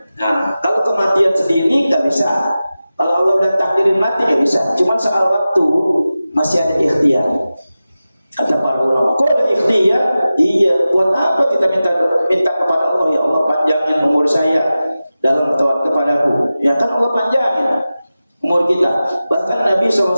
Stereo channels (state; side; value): inverted; both; correlation -0.95